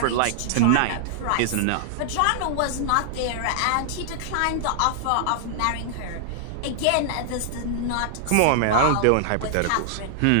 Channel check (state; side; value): different; both; correlation -0.01